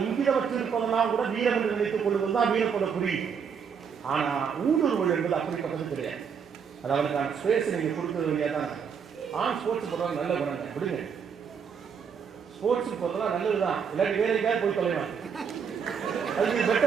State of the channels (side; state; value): left; quieter; 6.8 dB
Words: இங்கித வச்சு இருப்பதெல்லாம் கூட வீரம் என்று நினைத்துக் கொள்வது தான் வீரத்தோட புரியும். ஆனா ஊடுருவல் என்பது அப்படிப்பட்டது கிடையாது. அது அவனுக்கான ஸ்பேஸ் நீங்க கொடுக்கறது இல்லையா தான். ஆண் ஸ்போர்ட்ஸ் போடுறது நல்ல குணம் விடுங்க, ஸ்போர்ட்ஸுக்கு போறதெல்லாம் நல்லதுதான், இல்லாட்டி வேற எங்கேயாவது போய் தொலைவாங்க, அதுக்கு